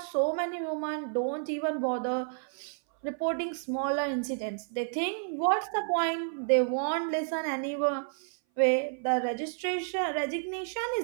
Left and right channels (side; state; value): left; silent; 57 dB below the other